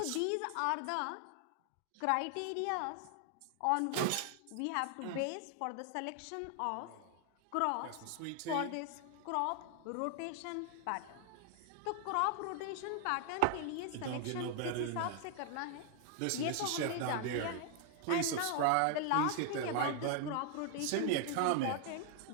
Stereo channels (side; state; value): both; different; correlation 0.00